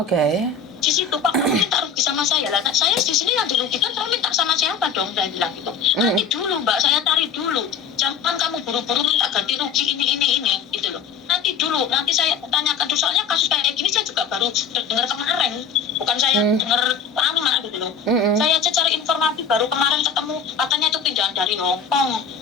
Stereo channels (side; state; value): right; quieter; 6.0 dB